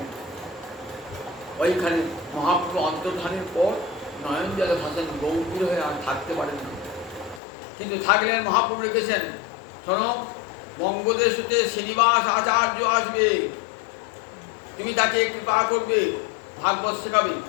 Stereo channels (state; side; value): drops out; right; at 7.4 s